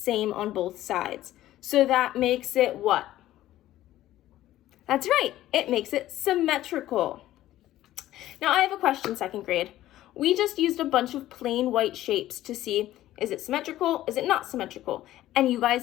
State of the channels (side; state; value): right; quieter; 14.3 dB